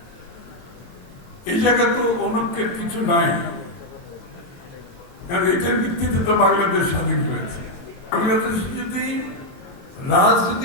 এই জায়গায় তো অনৈক্যের কিছু নাই, কারণ এটার ভিত্তিতে তো বাংলাদেশ স্বাধীন হয়েছে। বাংলাদেশ যদি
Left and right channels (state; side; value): late; right; 22 ms